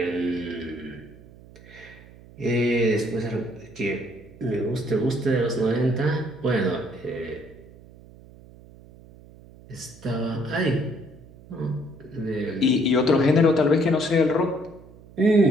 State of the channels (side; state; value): right; noise; hum, 22 dB below the sound